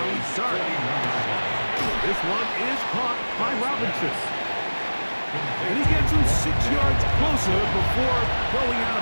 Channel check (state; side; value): inverted; both; correlation -1.00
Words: Dart. This one is caught by Robinson. And he gets him 6 yards closer before going out